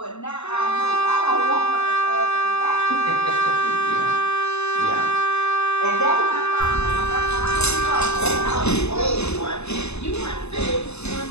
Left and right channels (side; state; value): right; late; 0.80 ms